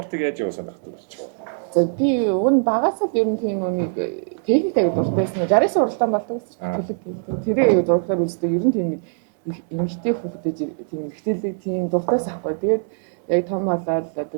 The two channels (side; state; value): left; silent; 64 dB below the other